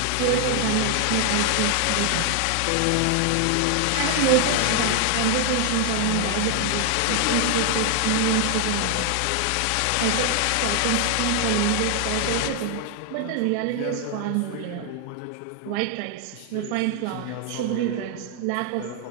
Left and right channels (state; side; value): different; both; correlation 0.00